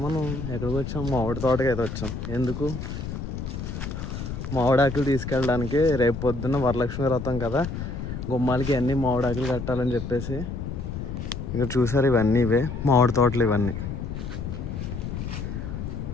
మనం ఎక్కడికి వచ్చాం? మామిడి తోటకి అయితే వచ్చాం. ఎందుకు? మామిడాకులు తీసుకెళ్ళడానికి. రేపు పొద్దున్న వరలక్ష్మి వ్రతం కదా, గుమ్మాలకి అన్నీ మామిడాకులు కట్టాలని చెప్పేసి. ఇక్కడ చూసారు, ఇవన్నీ ఇవే మామిడి తోటలు ఇవన్నీ.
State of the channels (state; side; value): noise; left; rumble, 6 dB below the sound